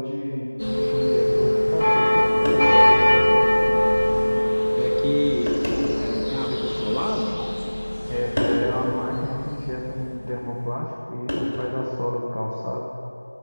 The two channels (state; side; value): inverted; both; correlation -1.00